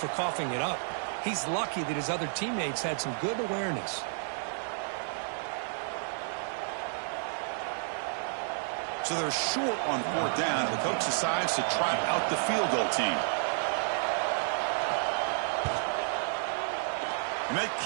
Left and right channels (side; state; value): left; silent; digital silence